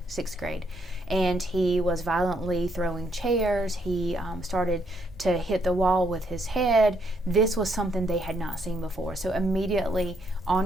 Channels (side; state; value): both; normal; correlation 0.73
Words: 6th grade, and he was violently throwing chairs. He started to hit the wall with his head. This was something they had not seen before. So immediately